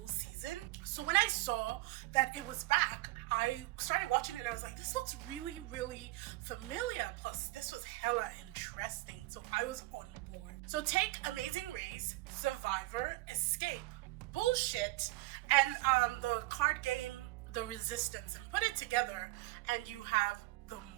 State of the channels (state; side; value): quieter; left; 20.7 dB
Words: season. So when I saw that it was back, I started watching it and I was like, this looks really familiar, plus this was hella interesting, so I was on board. So take Amazing Race, Survivor, Escape, Bullshit, and the card game The Resistance, and put it together and you have the